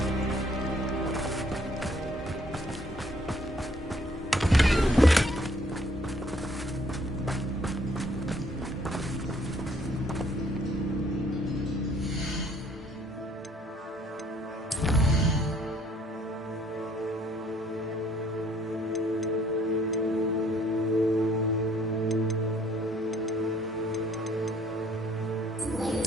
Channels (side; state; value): both; normal; correlation 0.62